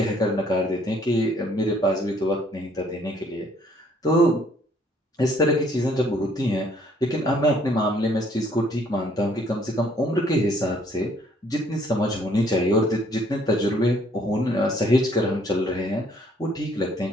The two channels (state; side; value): normal; both; correlation 0.63